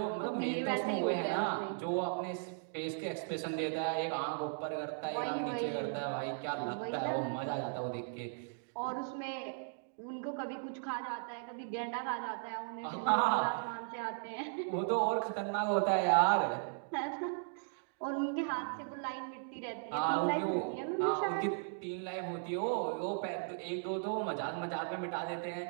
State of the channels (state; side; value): silent; left; digital silence